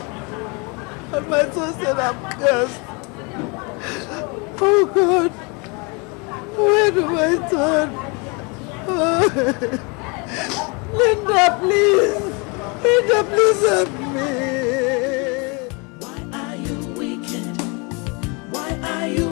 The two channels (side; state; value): right; quieter; 30.9 dB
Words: And my son said I'm cursed. Oh God. Where do I turn? Linda, please. Linda, please help me. Why are you wicked? Why are you